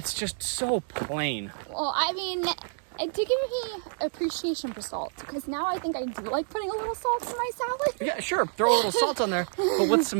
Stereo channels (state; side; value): silent; left; 56 dB below the other